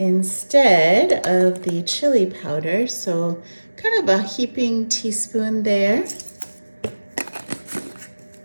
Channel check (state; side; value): inverted; both; correlation -1.00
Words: of the chili powder. So kind of a heaping teaspoon there.